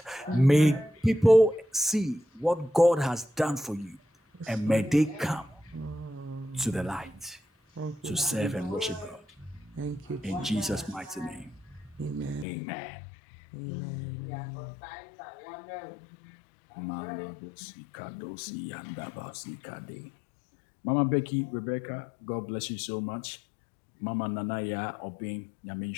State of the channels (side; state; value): right; drops out; at 12.5 s